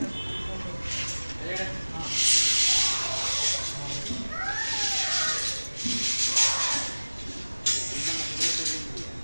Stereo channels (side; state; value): both; inverted; correlation -1.00